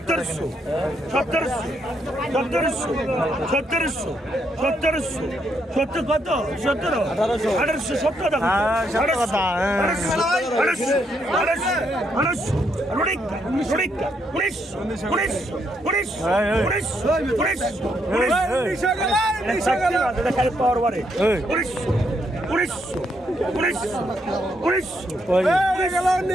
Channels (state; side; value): normal; both; correlation 0.76